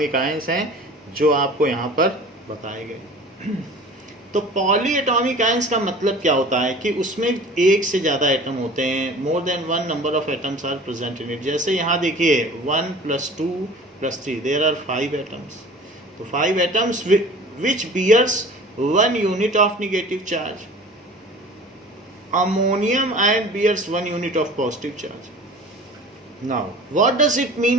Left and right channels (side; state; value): both; normal; correlation 0.43